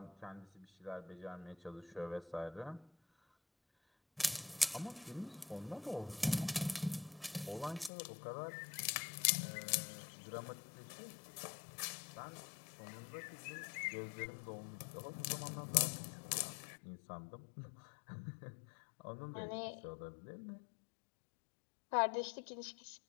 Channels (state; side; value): drops out; right; at 7.9 s